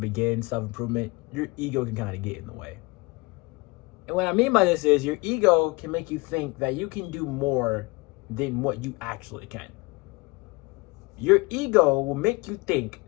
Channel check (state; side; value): quieter; right; 24.8 dB